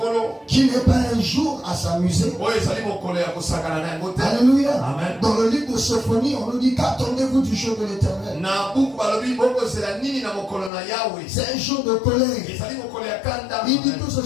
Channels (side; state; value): right; drops out; at 10.7 s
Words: qui n'est pas un jour à s'amuser. Alléluia. Amen. Dans le livre de Sophonie, on nous dit qu'attendez-vous du jour de l'Éternel. C'est un jour de colère. Il dit que ce